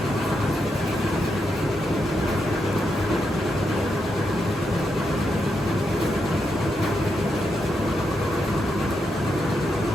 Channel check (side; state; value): both; normal; correlation 0.83